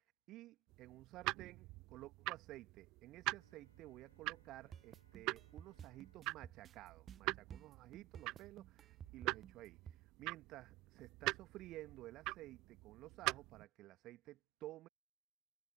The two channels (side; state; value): left; quieter; 18.7 dB